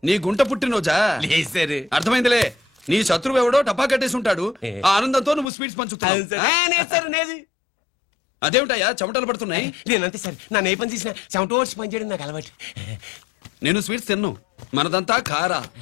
నీ గుంట పుట్టినరోజా? లేదు సార్. అర్థమైందిలే. నీ శత్రువు ఎవడో టపా కట్టేసి ఉంటాడు. ఆ ఆనందంతో నువ్వు స్వీట్స్ పంచుతున్నావు. అదేమిటయ్యా చెమటలు పడుతున్నాయి? నేనంతే సార్. నా ఏ పని చేసిన చెమట ఓడ్చి పని చేయడం నాకు అలవాటు. నేను స్వీట్స్ తిన్ను. మనదంతా కారా.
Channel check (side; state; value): right; drops out; at 5.5 s